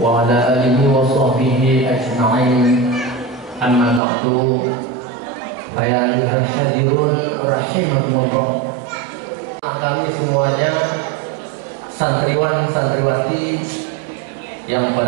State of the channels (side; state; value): left; drops out; at 4.0 s